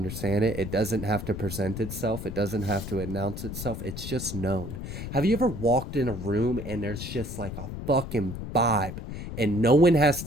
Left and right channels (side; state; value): left; noise; rumble, 8 dB below the sound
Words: it. It doesn't have to present itself. It doesn't have to announce itself. It's just known. Have you ever walked in a room and there's just like a fucking vibe and no one has